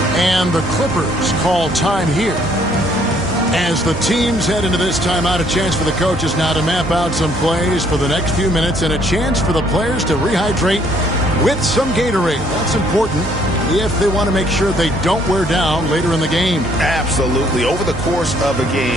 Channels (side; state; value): right; noise; hum, 13 dB below the sound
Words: And the Clippers call time here. As the teams head into this timeout, a chance for the coaches now to map out some plays for the next few minutes and a chance for the players to rehydrate with some Gatorade. That's important if they want to make sure they don't wear down later in the game. Absolutely. Over the course of a